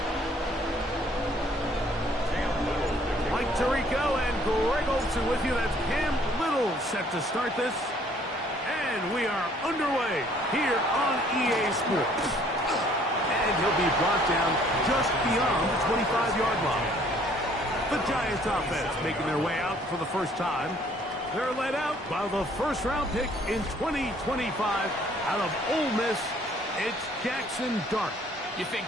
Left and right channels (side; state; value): both; normal; correlation 0.60